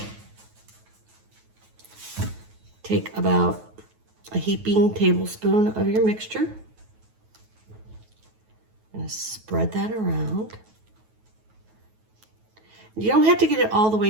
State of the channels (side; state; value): left; late; 9.3 ms